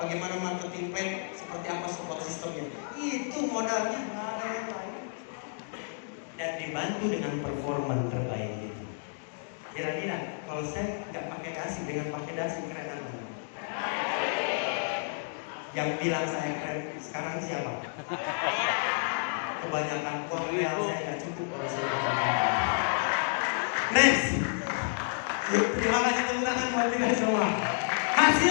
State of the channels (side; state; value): right; silent; digital silence